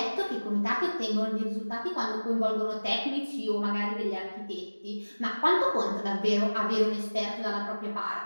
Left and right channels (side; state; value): both; inverted; correlation -1.00